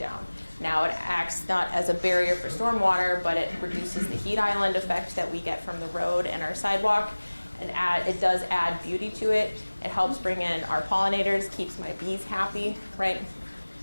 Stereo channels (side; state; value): both; inverted; correlation -1.00